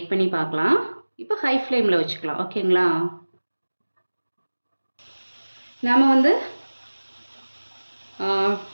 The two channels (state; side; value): inverted; both; correlation -1.00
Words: பண்ணி பார்க்கலாம். இப்போ ஹை ஃப்ளேமில் வச்சுக்கலாம். ஓகேங்களா, நாம் வந்து